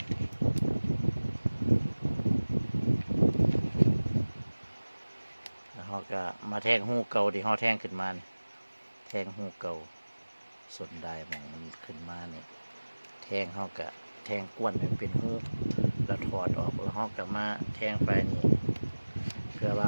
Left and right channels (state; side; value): inverted; both; correlation -1.00